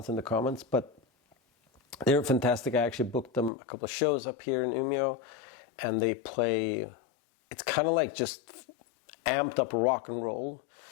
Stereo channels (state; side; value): drops out; right; at 3.5 s